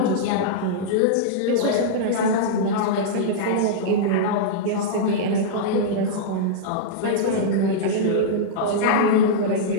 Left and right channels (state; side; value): different; both; correlation -0.03